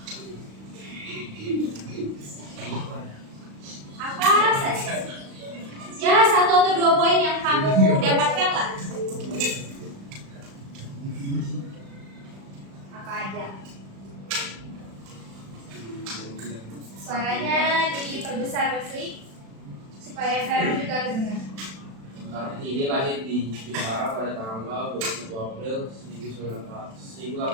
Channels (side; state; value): left; late; 36 ms